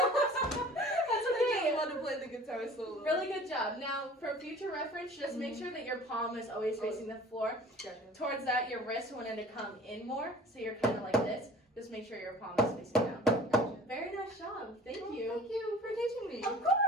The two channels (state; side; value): normal; both; correlation 0.45